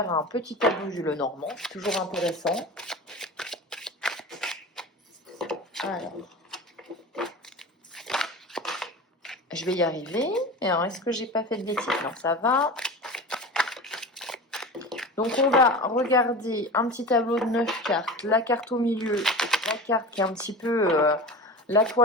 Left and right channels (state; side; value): normal; both; correlation 0.32